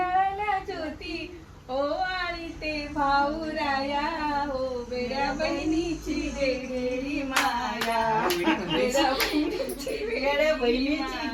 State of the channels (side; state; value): both; identical; correlation 1.00